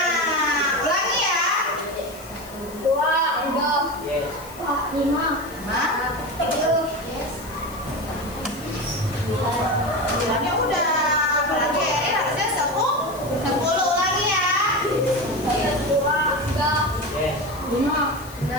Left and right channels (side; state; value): left; noise; hiss, 19 dB below the sound